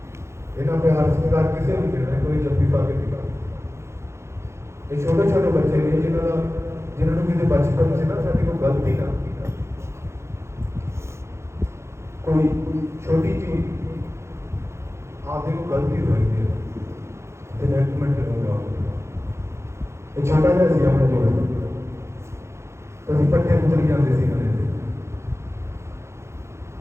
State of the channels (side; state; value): left; late; 0.13 ms